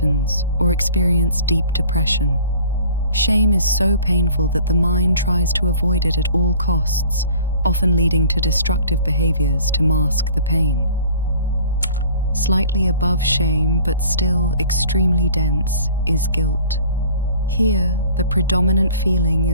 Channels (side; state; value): both; inverted; correlation -0.49